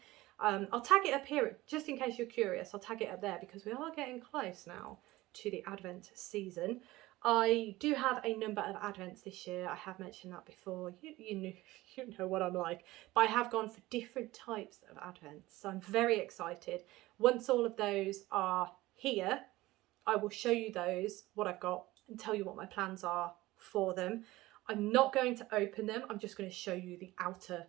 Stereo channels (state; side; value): quieter; left; 18.4 dB